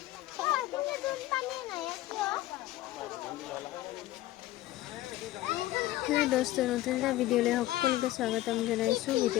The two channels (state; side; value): quieter; right; 16.0 dB